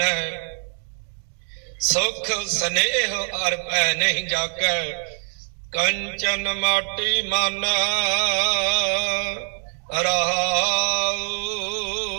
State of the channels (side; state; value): left; silent; 63 dB below the other